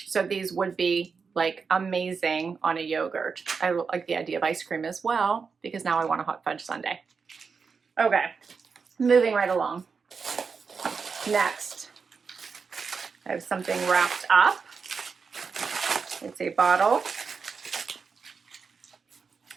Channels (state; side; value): quieter; left; 5.4 dB